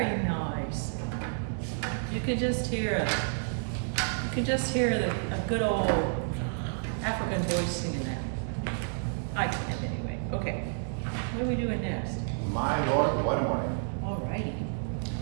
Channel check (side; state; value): left; silent; digital silence